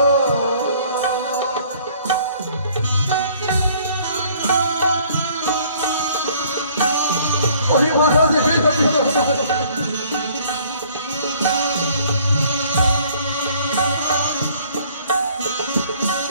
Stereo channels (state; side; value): inverted; both; correlation -0.58